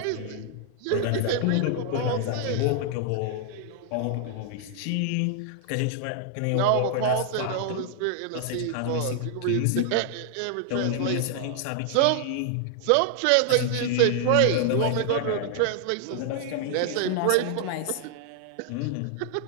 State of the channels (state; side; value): different; both; correlation 0.00